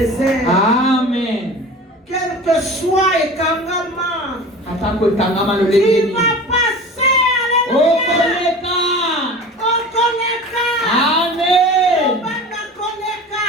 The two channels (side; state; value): both; normal; correlation 0.37